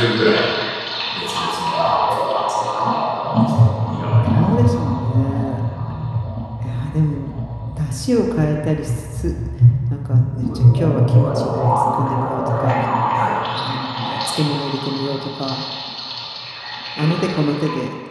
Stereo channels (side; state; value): both; identical; correlation 1.00